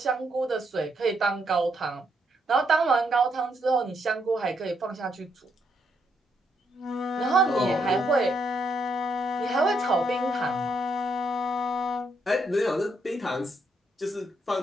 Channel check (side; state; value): both; normal; correlation 0.76